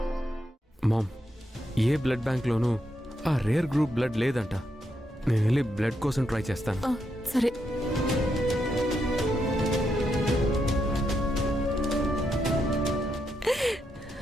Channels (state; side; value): normal; both; correlation 0.81